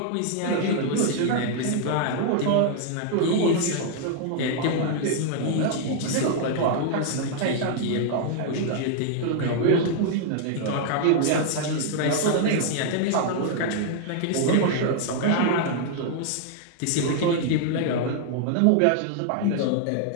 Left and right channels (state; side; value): different; both; correlation 0.00